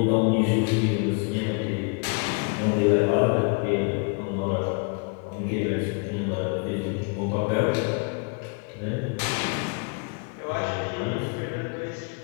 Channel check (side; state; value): right; quieter; 36.5 dB